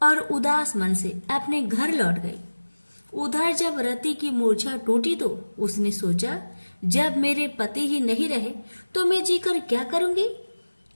और उदास मन से अपने घर लौट गई। उधर जब रति की मूर्छा टूटी तो उसने सोचा, जब मेरे पति ही नहीं रहे तो मैं जीकर क्या करूंगी?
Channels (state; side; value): inverted; both; correlation -1.00